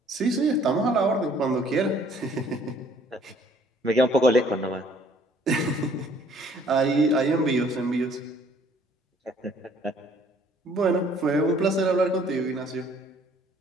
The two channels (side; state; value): both; normal; correlation 0.59